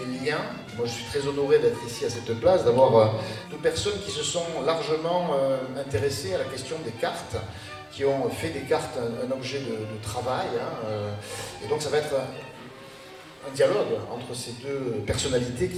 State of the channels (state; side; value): identical; both; correlation 1.00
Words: liens. Moi, je suis très honoré d'être ici à cette place, d'avoir deux personnes qui se sont largement intéressées à la question des cartes, qui ont fait des cartes un objet de travail. Et donc, ça va être un dialogue entre ces deux personnalités